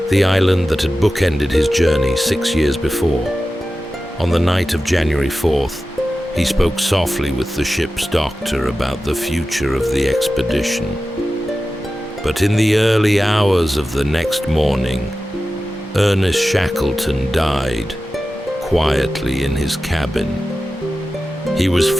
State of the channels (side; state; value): both; normal; correlation 0.94